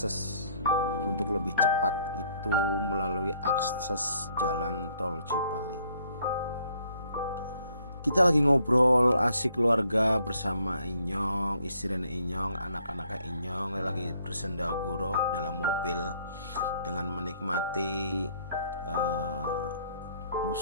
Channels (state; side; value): inverted; both; correlation -0.65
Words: untuk lebih cepat itu melalui akses jalan tol Cipali. Kita lagi ngobrol asik keluarga bersama Inyong, istri dan Inyong, anak-anak Inyong lagi bersendaguro dalam mobil dengan menikmati